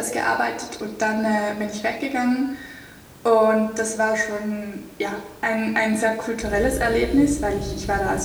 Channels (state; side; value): identical; both; correlation 1.00